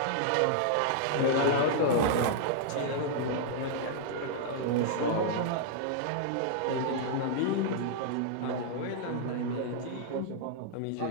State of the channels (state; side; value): different; both; correlation -0.01